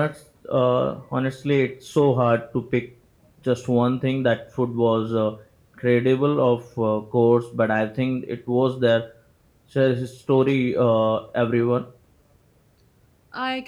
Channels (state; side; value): identical; both; correlation 1.00